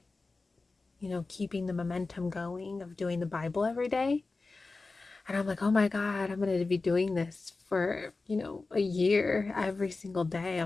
keeping the momentum going of doing the Bible every day. And I'm like, oh my God, I'm going to be doing this for, a year every single day.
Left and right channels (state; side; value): quieter; right; 3.7 dB